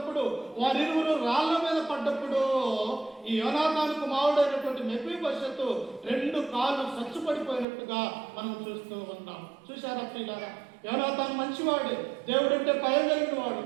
వారిరువురు రాళ్ల మీద పడ్డప్పుడు ఈ యోనాతాను కుమారుడైనటువంటి మెఫీబోషెతు 2 కాళ్ళు సచ్చుపడిపోయినట్టుగా మనం చూస్తూ ఉన్నాం. చూశారా ప్రియులారా? యోనాతాను మంచివాడే, దేవుడంటే భయం కలిగిన వాడు,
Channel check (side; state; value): left; drops out; at 7.7 s